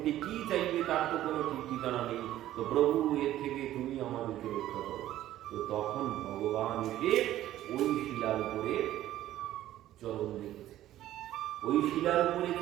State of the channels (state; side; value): quieter; left; 13.6 dB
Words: কি চাইবে তার তো কোনো ঠিক ঠিকানা নেই, তো প্রভু এর থেকে তুমি আমাদেরকে রক্ষা করো। তো তখন ভগবান এসে ওই শিলার উপরে চরণ রেখেছে, ওই শিলার উপরে